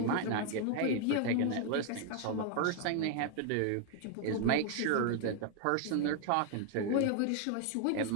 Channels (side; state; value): both; different; correlation 0.00